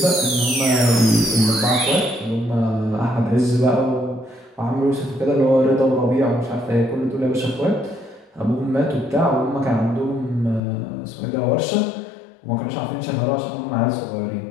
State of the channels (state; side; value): drops out; right; at 10.6 s